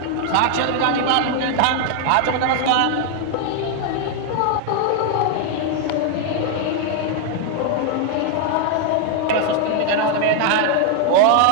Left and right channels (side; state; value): both; different; correlation 0.00